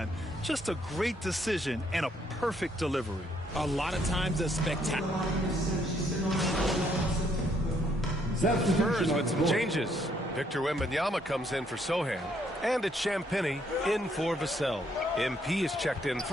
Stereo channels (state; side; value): normal; both; correlation 0.70